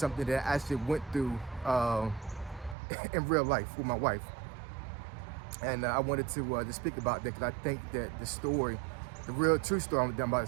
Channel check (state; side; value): drops out; left; at 2.8 s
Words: that I actually went through in real life with my wife. And I wanted to speak about that because I think that the story, the real true story I'm about